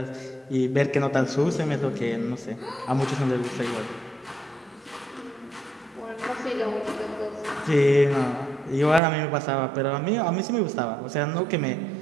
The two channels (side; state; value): left; drops out; at 9.0 s